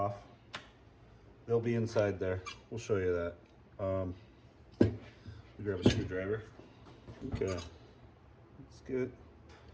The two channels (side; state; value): both; identical; correlation 1.00